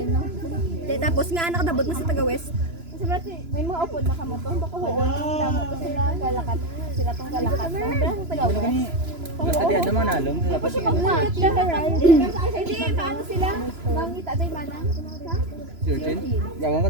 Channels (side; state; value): left; late; 3.0 ms